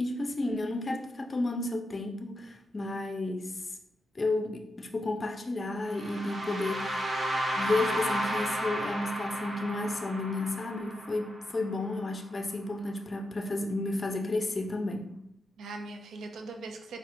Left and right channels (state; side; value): normal; both; correlation 0.86